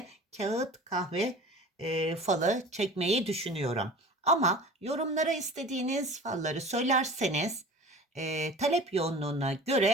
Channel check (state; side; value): normal; both; correlation 0.40